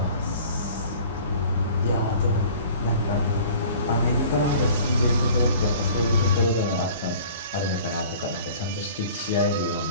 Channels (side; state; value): both; inverted; correlation -0.47